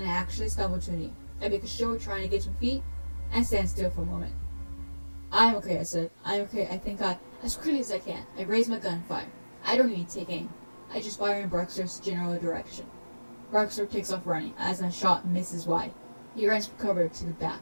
I actually stumble to a knee. I make a show of trying to get to my feet, and stand still for a moment. I'm okay, I said. I'm okay. I think as quickly as I can. I raise my gun and fire. I don't even take aim. I just fire in Barstow's general direction. Barstow takes off running, as my shot misses wide. He runs for cover to the back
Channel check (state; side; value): inverted; both; correlation -1.00